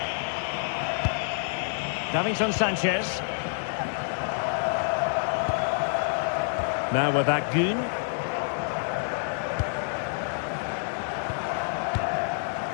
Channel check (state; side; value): silent; right; 60 dB below the other